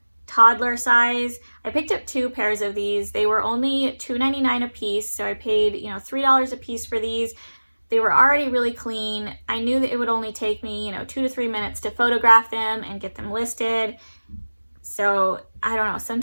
toddler size. I picked up 2 pairs of these. They were only $2.99 a piece, so I paid $3 a piece for these. They were already really clean. I knew that it would only take me 2 to 3 minutes to photograph them and get them listed. So I don't know,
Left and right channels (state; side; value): inverted; both; correlation -1.00